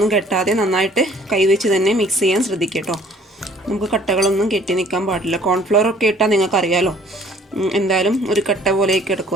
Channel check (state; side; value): normal; both; correlation 0.56